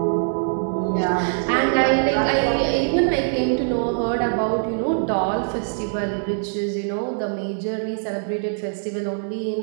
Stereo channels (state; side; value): silent; left; digital silence